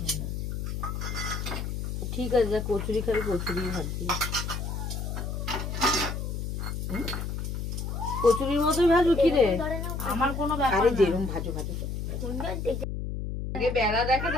হয় না। ঠিক আছে, যা কচুরি খাবি কচুরি ভাজবি, কচুরির মতোই ভাজবো। কি রে, আমার কোনো ব্যাপার না, যেরকম ভাজো ভাজো, আগে বেলা দেখে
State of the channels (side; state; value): left; noise; hum, 4 dB below the sound